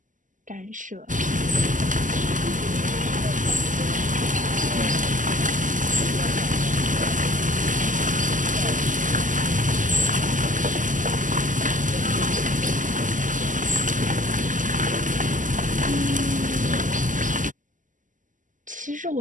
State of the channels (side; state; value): left; late; 0.37 ms